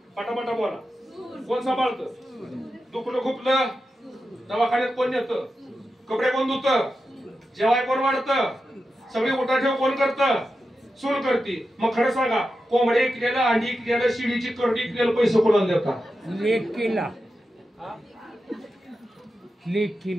पटापटा बोला, कोण सांभाळतं. दुखलं खुपलं दवाखान्यात कोण येतं, कपडे कोण धुतं, जेवाय कोण वाढतं, सगळी उठाठेव कोण करतं, सून करती. मग खरं सांगा, कोंबडे इकलेलं, अंडी इकलेलं, शिडीची करडी इकलेलं पैसे कोणाला देतात, लेकीला.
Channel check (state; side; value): normal; both; correlation 0.90